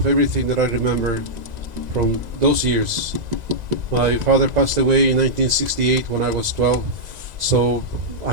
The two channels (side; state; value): left; late; 1.9 ms